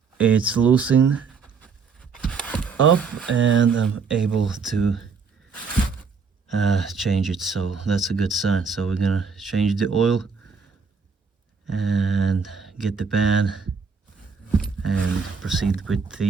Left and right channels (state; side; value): quieter; left; 5.4 dB